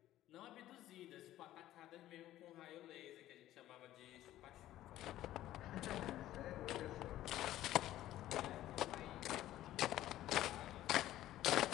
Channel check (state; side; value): quieter; right; 14.0 dB